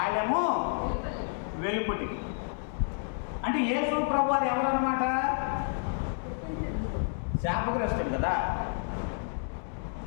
వెలుపుటి. అంటే యేసు ప్రభు వారు ఎవరన్నమాట? శాపగ్రస్తుడు కదా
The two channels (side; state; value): right; silent; digital silence